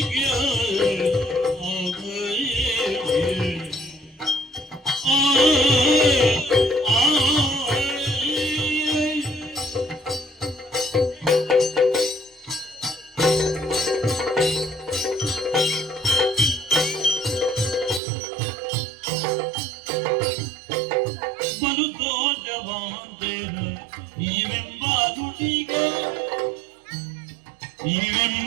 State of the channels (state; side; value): drops out; left; at 18.0 s